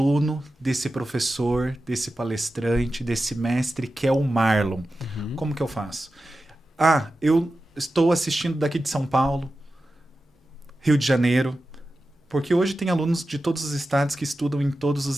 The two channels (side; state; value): both; normal; correlation 0.93